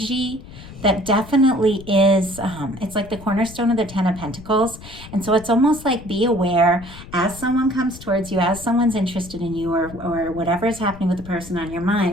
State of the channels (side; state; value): left; noise; rumble, 16 dB below the sound